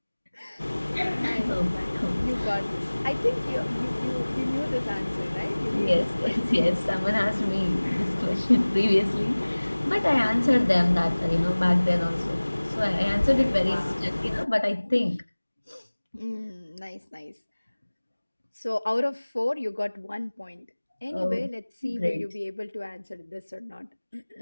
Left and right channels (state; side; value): inverted; both; correlation -1.00